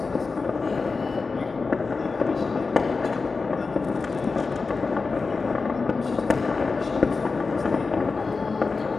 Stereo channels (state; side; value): quieter; right; 4.3 dB